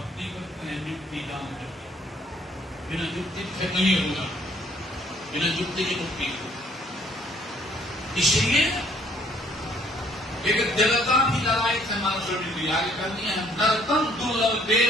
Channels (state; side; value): normal; both; correlation 0.62